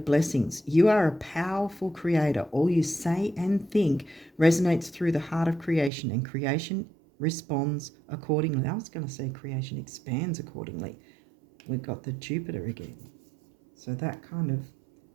You are a powerful creator. All you say and think resonates through the heart of creation, and creation responds accordingly. I was going to say creation expands accordingly. We've got the Jupiter again. So that kind of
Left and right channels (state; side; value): drops out; left; at 5.9 s